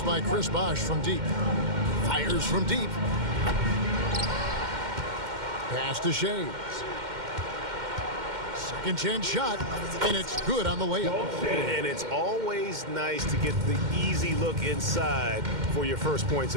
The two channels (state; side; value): late; left; 2.1 ms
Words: by Chris Bosh from deep. Fires from deep. Pass to Shays. Second chance shot, and it's good on the layup. And it's always nice to get the easy look inside for your first points